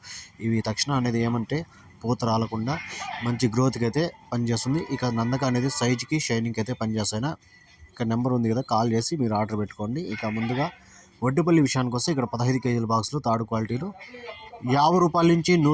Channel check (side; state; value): both; identical; correlation 1.00